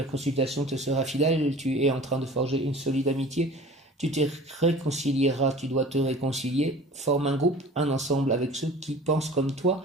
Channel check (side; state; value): both; normal; correlation 0.43